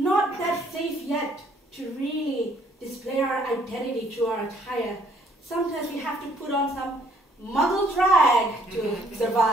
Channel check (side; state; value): both; normal; correlation 0.64